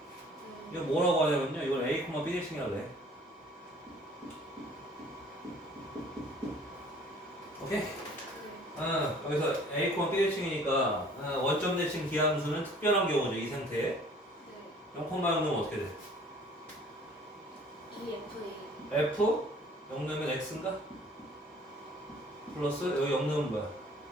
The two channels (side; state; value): both; normal; correlation 0.53